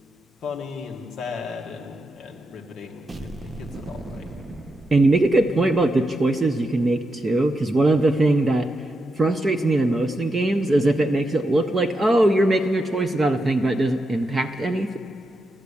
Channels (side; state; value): both; normal; correlation 0.85